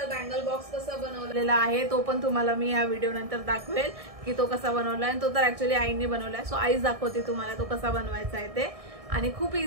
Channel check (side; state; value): left; late; 1.6 ms